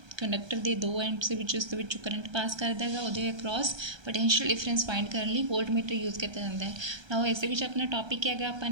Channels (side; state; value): left; late; 1.3 ms